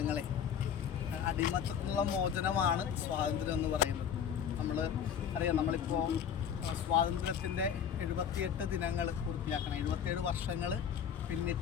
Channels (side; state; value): right; quieter; 8.2 dB